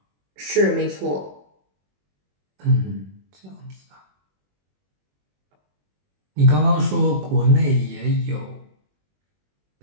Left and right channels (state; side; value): late; left; 21 ms